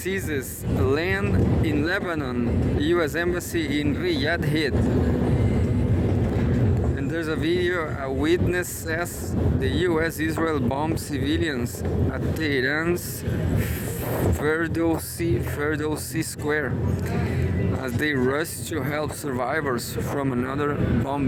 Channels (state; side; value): identical; both; correlation 1.00